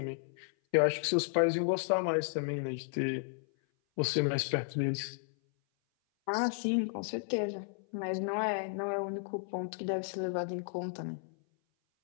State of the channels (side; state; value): right; silent; 55 dB below the other